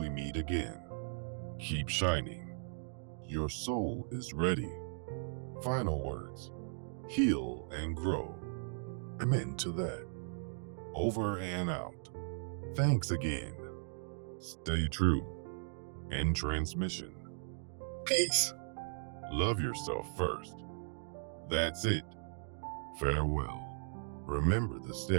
meet again, keep shining. Your soul is ready. Final words. Heal and grow. Amen to that. Over and out. Thanks again. Stay true. End transmission. Peace. Love yourself first. That's it. Farewell. Remember the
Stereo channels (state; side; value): silent; left; digital silence